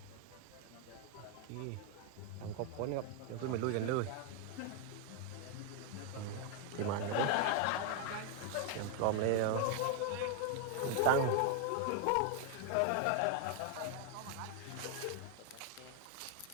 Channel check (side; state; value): both; different; correlation 0.00